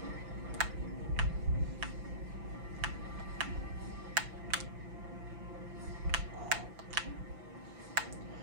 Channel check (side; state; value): left; late; 5.9 ms